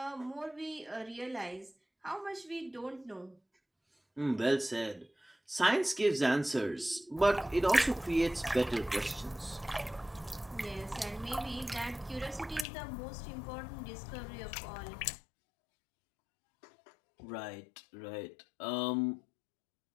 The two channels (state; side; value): drops out; right; at 12.7 s